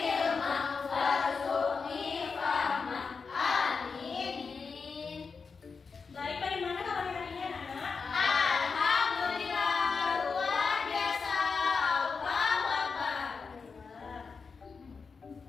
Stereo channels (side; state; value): right; quieter; 5.1 dB